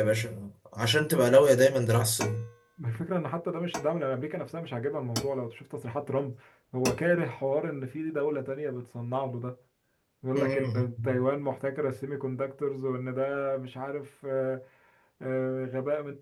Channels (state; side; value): identical; both; correlation 1.00